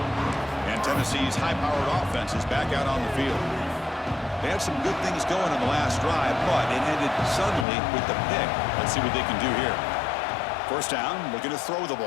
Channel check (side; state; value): right; drops out; at 7.7 s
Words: And Tennessee's high-powered offense is back out on the field. They had some good things going on the last drive, but it ended suddenly with the pick. Let's see what they can do here. First down, looking to throw the